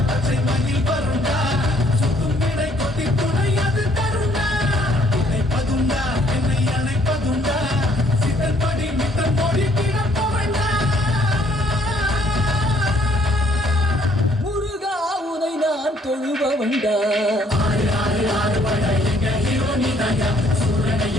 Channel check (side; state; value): both; normal; correlation 0.65